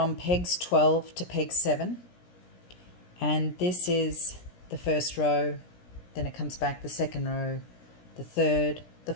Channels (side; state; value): right; late; 17 ms